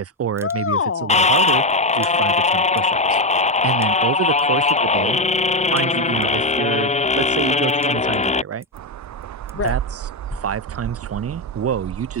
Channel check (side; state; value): both; normal; correlation 0.08